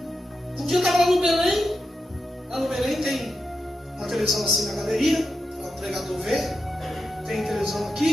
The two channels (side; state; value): both; normal; correlation 0.88